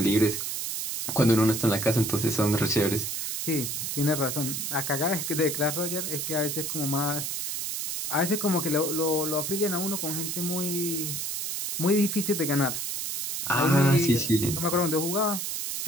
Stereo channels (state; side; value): noise; right; hiss, 3 dB below the sound